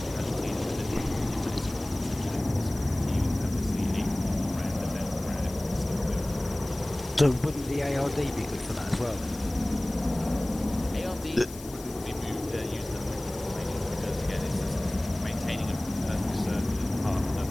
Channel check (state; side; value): noise; left; hiss, 16 dB below the sound